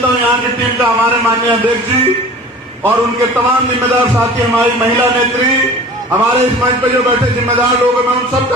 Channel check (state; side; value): normal; both; correlation 0.41